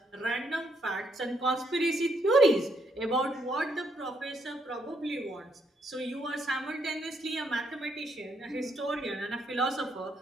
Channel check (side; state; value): both; normal; correlation 0.74